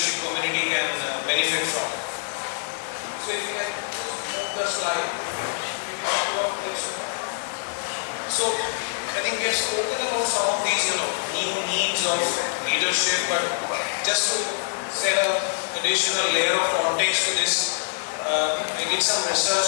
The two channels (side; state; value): right; silent; digital silence